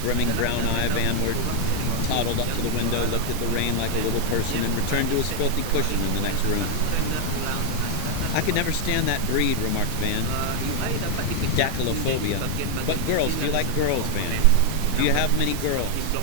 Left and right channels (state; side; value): different; both; correlation 0.00